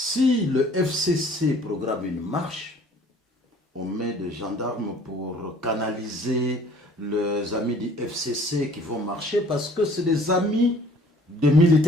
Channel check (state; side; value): normal; both; correlation 0.54